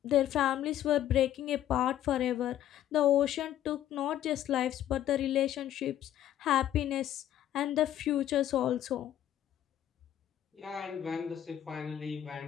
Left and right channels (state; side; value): quieter; right; 11.7 dB